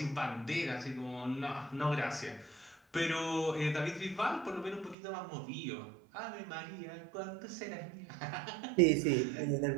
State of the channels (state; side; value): drops out; left; at 5.0 s